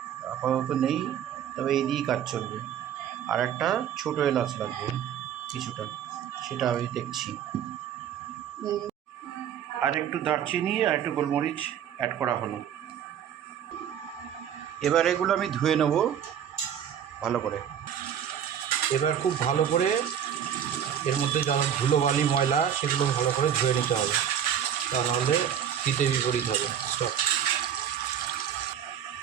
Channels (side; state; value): left; quieter; 9.3 dB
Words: আপাতত নেই, তবে এই দিয়েই কাজ চলবে। আর একটা ছোটো এলাচ লাগবে কিছুটা, সেটা আমি দেখছি। আর একটু দারচিনি আর একটু গোলমরিচ অ্যাড করা হলো। এবার এগুলো আমি ধুয়ে নেব ভালো করে। এবার খুব ভালো করে এর মধ্যে যা ধুলোবালি ময়লা সেগুলো ভালো করে ধুয়ে নিতে হবে, তা নাহলে হিতে বিপরীত হবে সব।